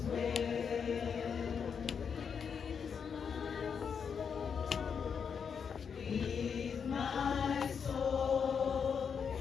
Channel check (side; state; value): right; quieter; 6.6 dB